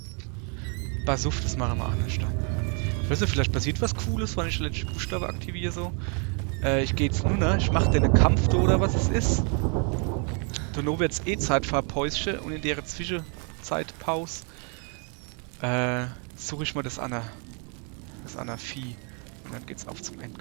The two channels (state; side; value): quieter; left; 37.5 dB